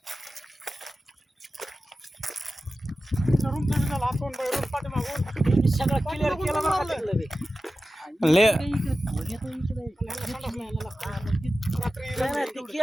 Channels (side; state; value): both; normal; correlation 0.94